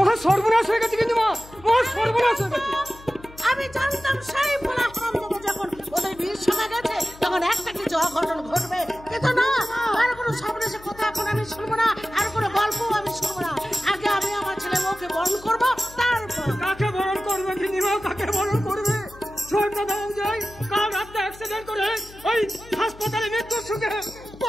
সর্বনাশ হয়ে গেছে, কিন্তু মহা সর্বনাশ হয়ে গেছে। আমি জানতাম সেই ভোলা হারামজাদা যখন ওদের বিয়ের সময় গেছে তখন একটা কিছু অঘটন ঘটবে, কিন্তু না, আর কোনো সর্বনাশের কথা এখন আমি শুনবো না, আর কোনো গল্প আমি শুনবো না। আগে আমি আমার ছেলে বউকে বরণ করবো, তারপর কাকে বরণ করবে গিন্নিমা, কাকে বরণ করবে? শোনটা দাও যায়, কাল রাতে অ্যাক্সিডেন্ট করে ওই হাসপাতালে মৃত্যুর সুখে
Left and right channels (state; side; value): noise; left; hum, 20 dB below the sound